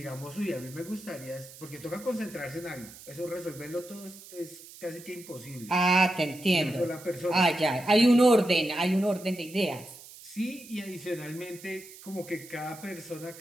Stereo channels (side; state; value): right; noise; hiss, 18 dB below the sound